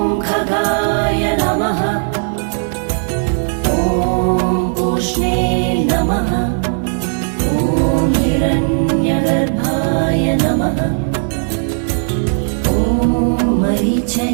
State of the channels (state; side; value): silent; left; 63 dB below the other